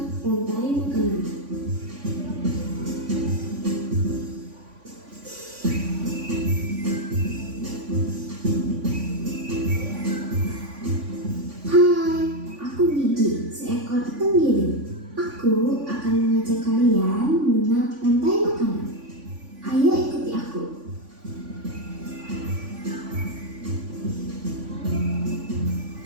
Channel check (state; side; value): late; left; 3.5 ms